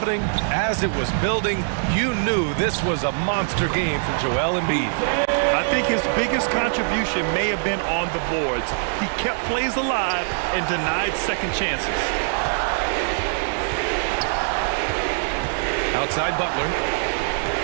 as it was building, you knew this was a monster game for Joel Embiid. I think his biggest contribution may have been on the boards. He kept plays alive and denied second chances. Outside Butler.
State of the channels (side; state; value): left; silent; digital silence